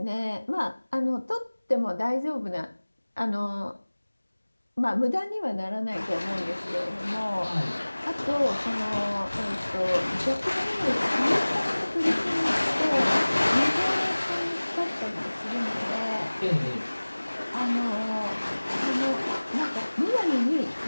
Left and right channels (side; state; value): both; inverted; correlation -1.00